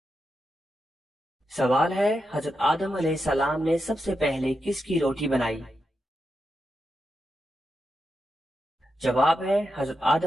سوال ہے حضرت آدم علیہ السلام نے سب سے پہلے کس کی روٹی بنائی؟ جواب ہے حضرت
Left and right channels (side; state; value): both; normal; correlation 0.87